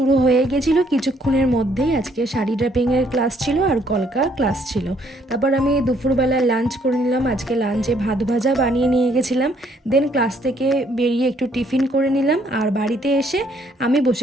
হয়ে গেছিল কিছুক্ষণের মধ্যেই। আজকে শাড়ি ড্রাপিংয়ের ক্লাস ছিল আর কলকা ক্লাস ছিল। তারপর আমি দুপুরবেলা লাঞ্চ করে নিলাম। আজকে লাঞ্চে ভাত ভাজা বানিয়ে নিয়ে গেছিলাম। দেন ক্লাস থেকে বেরিয়ে একটু টিফিন করে নিলাম। আর বাড়িতে এসে আমি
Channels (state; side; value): normal; both; correlation 0.67